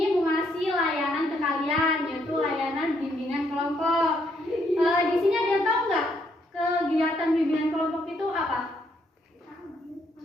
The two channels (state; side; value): normal; both; correlation 0.72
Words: mau ngasih layanan ke kalian, yaitu layanan bimbingan kelompok. Di sini ada yang tahu nggak kegiatan bimbingan kelompok itu apa?